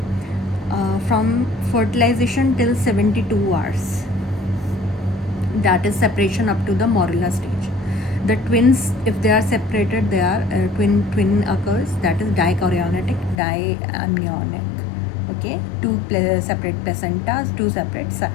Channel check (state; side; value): drops out; right; at 13.4 s